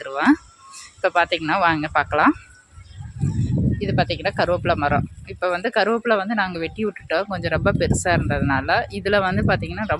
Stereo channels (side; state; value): both; identical; correlation 1.00